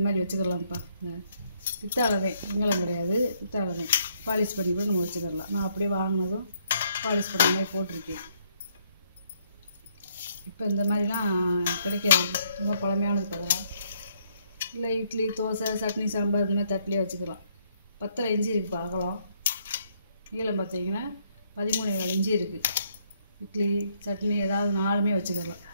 மாதிரி வச்சுக்கலாம்ப்பா. பித்தாளதே, வெங்கலம் கிடையாது, பித்தாளதே. பாலிஷ் பண்ணி கூட நம்ம வச்சுக்கலாம். நான் அப்படியே வாங்கினதும் பாலிஷ் பண்ண மாதிரி போட்டிருக்கேன். இப்போ இந்த மாதிரிலாம் கிடைக்காது, ரொம்ப பழமையானது பதலாம். இல்லை இட்லி, தோசை, சட்னி, சாம்பார் இந்த மாதிரி தட்டிலே வச்சுக்கலாம். 10.5 இன்ச்சு இருக்குப்பா அகலம். நீளம் பார்த்திங்கன்னா 13.25 இன்ச்சு இருக்குது. இட்லி, சட்னி ஏதாவது 4மே வச்சுக்கலாம்.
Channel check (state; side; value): inverted; both; correlation -0.70